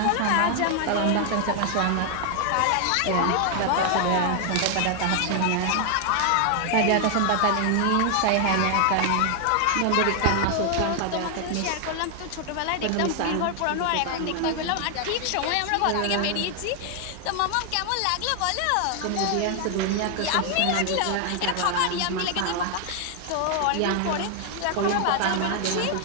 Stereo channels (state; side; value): different; both; correlation 0.00